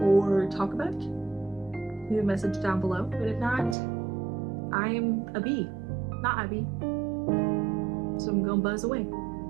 talk about, leave a message down below. But if not, I'm a bee, not Abby. So I'm gonna buzz away.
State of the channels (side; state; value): left; drops out; at 3.8 s